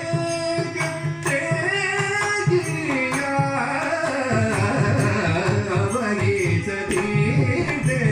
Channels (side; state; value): both; identical; correlation 1.00